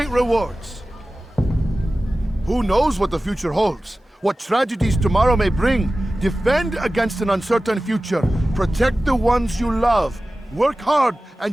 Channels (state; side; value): normal; both; correlation 0.96